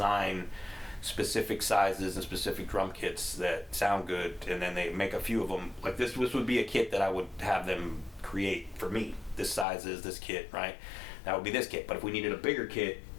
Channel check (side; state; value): right; drops out; at 9.7 s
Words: specific sizes and specific drum kits that sound good, and then they make a few of them. Like this would be a kit that I would have them create for me. This size is this kit, right? That would be this kit. But if we needed a bigger kit,